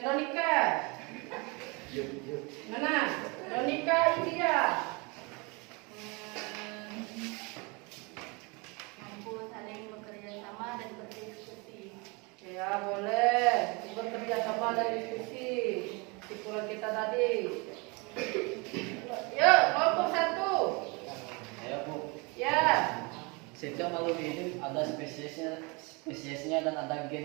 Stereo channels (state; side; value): quieter; left; 28.9 dB